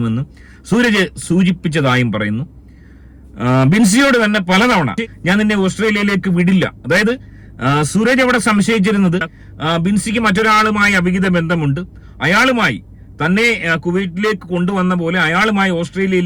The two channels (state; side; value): identical; both; correlation 1.00